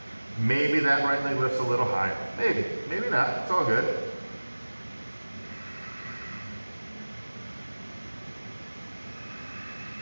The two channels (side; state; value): both; inverted; correlation -1.00